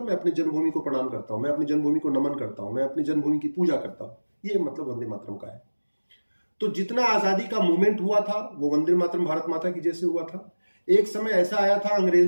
मैं अपनी जन्मभूमि को प्रणाम करता हूं, मैं अपनी जन्मभूमि को नमन करता हूं, मैं अपनी जन्मभूमि की पूजा करता हूं, ये मतलब वंदे मातरम का है। तो जितना आजादी का मूवमेंट हुआ था वो वंदे मातरम, भारत माता की जय से हुआ था। एक समय ऐसा आया था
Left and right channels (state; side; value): inverted; both; correlation -1.00